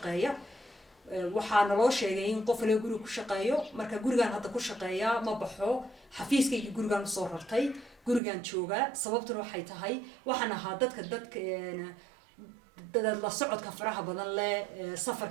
waxaa naloo sheegay in qof laga guriga ku shaqeeyo marka gurigaan hadda ku shaqeeya ma baxo xafiiskayga gurigaan usoo rartay gurigaan joogaa sababtuna waxay tahay waxaan ahaa dadka la socodka faraha badan leh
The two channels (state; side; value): drops out; left; at 8.2 s